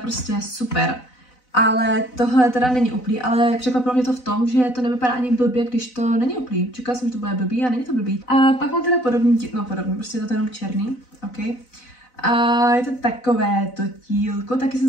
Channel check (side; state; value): right; late; 4.0 ms